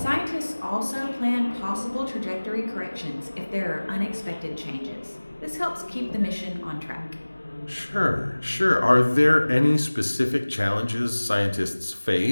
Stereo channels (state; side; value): inverted; both; correlation -1.00